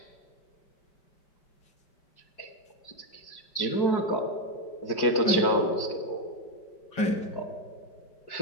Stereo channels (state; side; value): late; right; 5.1 ms